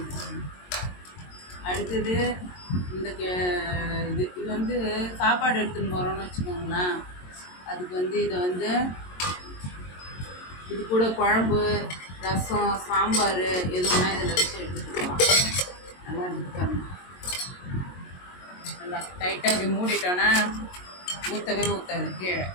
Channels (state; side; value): late; right; 22 ms